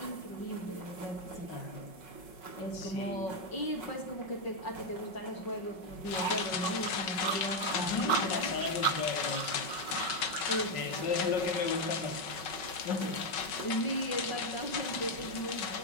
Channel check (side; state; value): right; late; 5.4 ms